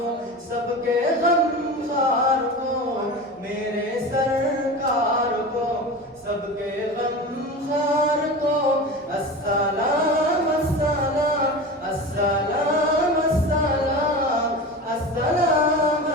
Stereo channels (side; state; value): both; normal; correlation 0.29